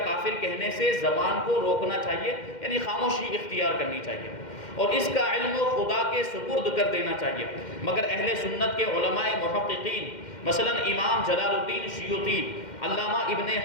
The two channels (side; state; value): right; late; 2.1 ms